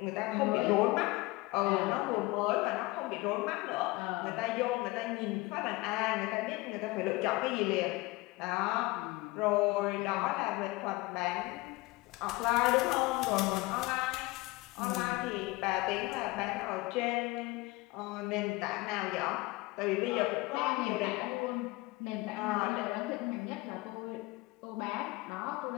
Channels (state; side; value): quieter; right; 21.9 dB